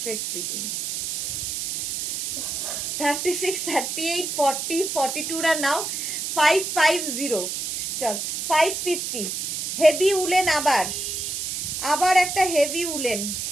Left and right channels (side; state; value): right; noise; hiss, 3 dB below the sound